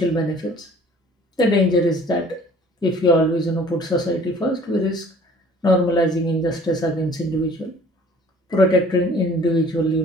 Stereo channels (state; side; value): normal; both; correlation 0.52